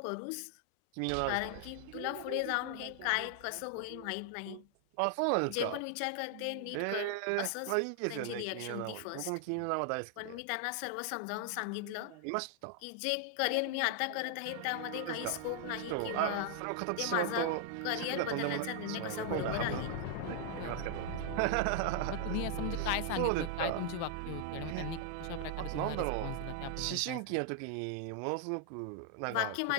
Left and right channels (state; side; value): different; both; correlation 0.00